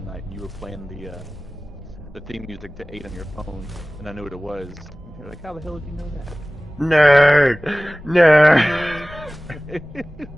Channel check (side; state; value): both; normal; correlation 0.98